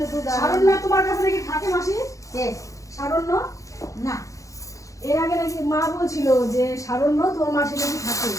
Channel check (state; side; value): late; right; 0.16 ms